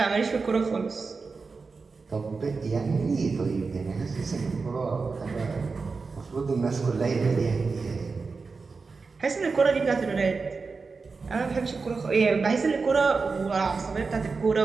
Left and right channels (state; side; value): quieter; left; 4.5 dB